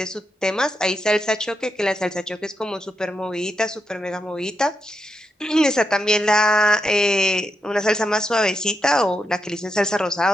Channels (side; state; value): both; normal; correlation 0.84